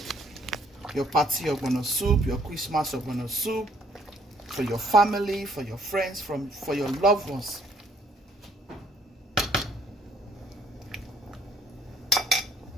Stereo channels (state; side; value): normal; both; correlation 0.64